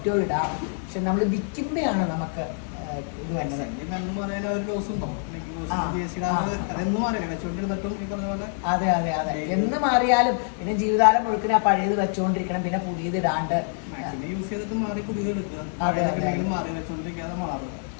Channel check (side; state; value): right; silent; 57 dB below the other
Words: ഇടാം. പക്ഷെ നമ്മൾ വിൽക്കുമ്പോഴാണ് നമുക്ക് ഇത് വരുന്നത്. അതെ അതെ അതെ, എന്ന് മാറിയാലും പിന്നെ ജീവിതകാലം മുഴുക്കിന് ആ പഴയത് വെച്ചുകൊണ്ടിരിക്കണം, പിന്നെ പുതിയത് ഇടാണ്ട്. അതെ അതെ